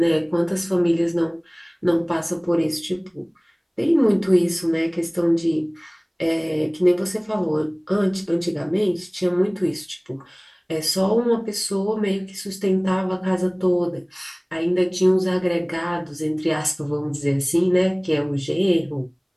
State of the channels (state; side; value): identical; both; correlation 1.00